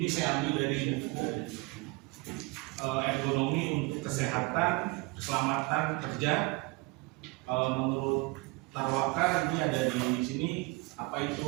saya ambil dari buku ergonomi untuk kesehatan, keselamatan kerja. Menurut Tarwaka ini ada di sini apa itu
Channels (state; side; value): quieter; left; 25.4 dB